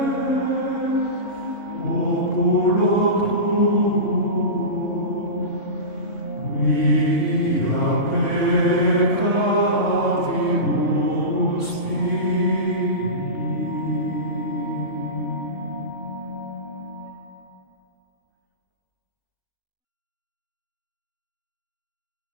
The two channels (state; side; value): late; right; 3.7 ms